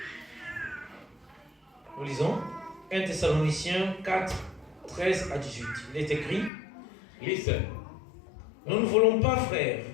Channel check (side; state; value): right; drops out; at 6.5 s